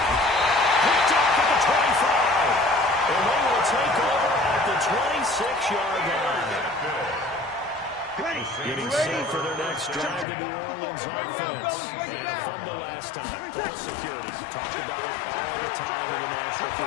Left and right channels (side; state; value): right; drops out; at 10.2 s